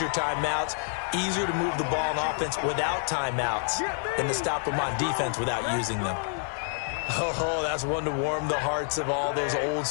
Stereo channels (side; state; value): right; silent; 57 dB below the other